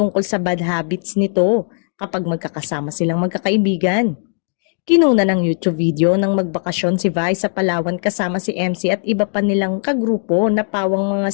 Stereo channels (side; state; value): right; silent; digital silence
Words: sa bad habits nito kapag magkakasama silang magkakaibigan. Kinuna ng YouTube video ng magbakasyon si Vice sa Palawan kasama si MC at iba pa nilang kagrupo na pawang mga